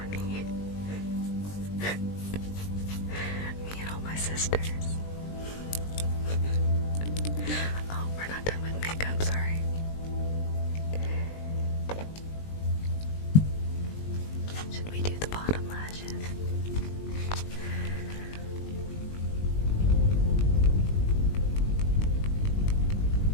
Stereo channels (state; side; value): late; right; 20 ms